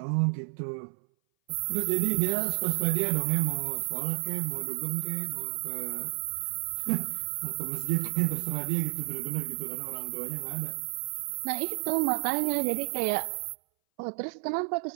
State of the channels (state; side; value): silent; left; 57 dB below the other